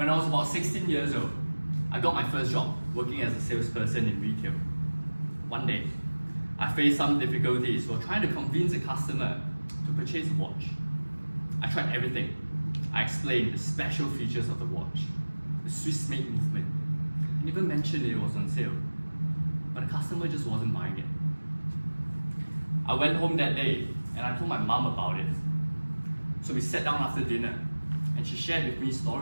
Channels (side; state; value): both; inverted; correlation -1.00